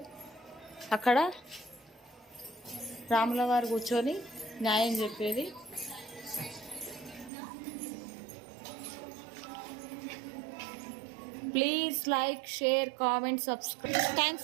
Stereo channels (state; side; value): drops out; left; at 7.3 s